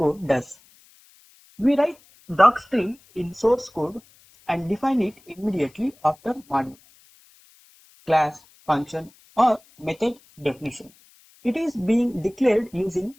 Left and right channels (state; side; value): noise; left; hiss, 29 dB below the sound